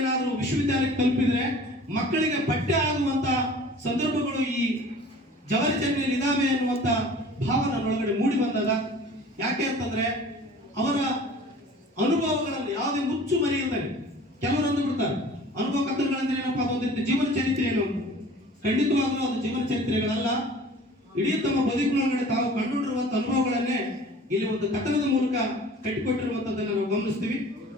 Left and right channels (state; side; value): normal; both; correlation 0.45